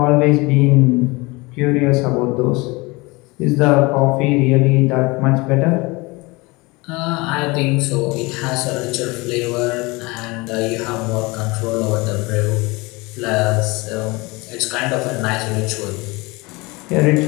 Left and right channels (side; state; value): right; quieter; 24.5 dB